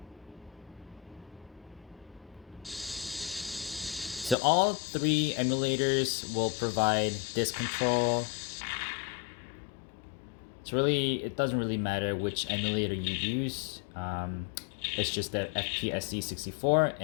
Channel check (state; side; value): drops out; right; at 4.4 s